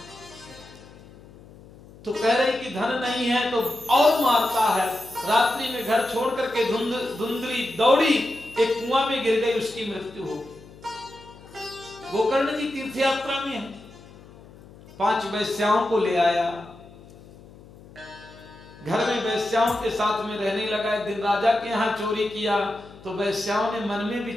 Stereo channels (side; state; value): left; noise; hum, 21 dB below the sound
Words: तो कह रहे कि धन नहीं है, तो और मारता है। रात्रि में घर छोड़ करके धुंधली दौड़ी, एक कुआं में गिर गई, उसकी मृत्यु हो गई। गोकर्ण जी तीर्थ यात्रा में है, 5 वैश्याओं को ले आया, घर में वैश्याओं के साथ में रहने लगा। एक दिन राजा के यहाँ चोरी किया, तो वैश्याओं ने मन में